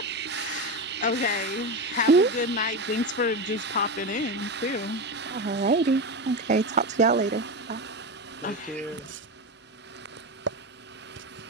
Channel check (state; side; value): normal; both; correlation 0.18